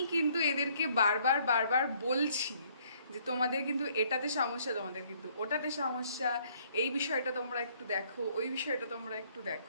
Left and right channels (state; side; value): inverted; both; correlation -0.64